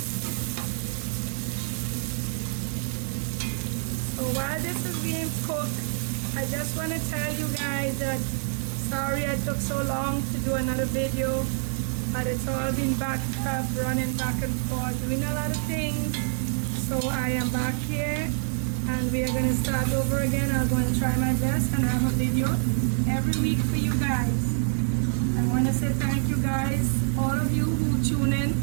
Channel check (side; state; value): left; silent; 60 dB below the other